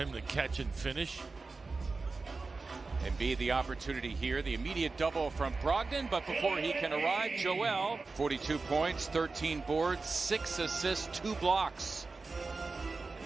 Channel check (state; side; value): quieter; left; 3.9 dB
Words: to catch and finish. Embiid the opportunity here, the immediate double from Brogdon, but before he can arrive, Joel, 42 points, 13 boards, 6 assists, 2 blocks. In